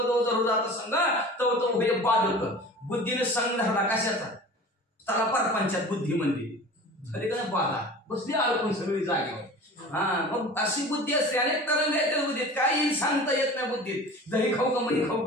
जवळ जात संघ तो हे बाधक. बुद्धीने संघ धरला कशाचा, त्याला परपंचात बुद्धी म्हणते झाली का बाधा बसली अडकून सगळी जागेवर. मग अशी बुद्धी असते, अनेक तरंग आहेत बुद्धीत, काही सांगता येत नाही बुद्धीत. दही खाऊ का मनी खाऊ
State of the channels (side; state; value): both; normal; correlation 0.39